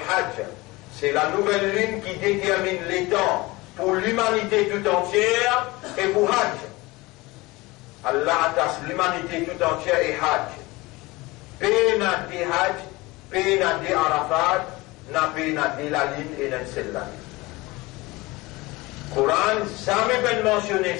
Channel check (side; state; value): right; quieter; 21.9 dB